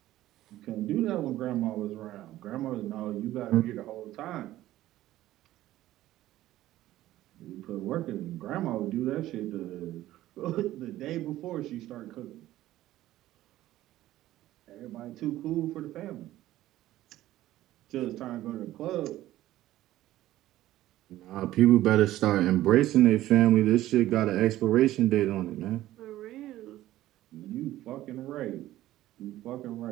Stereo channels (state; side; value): quieter; left; 14.8 dB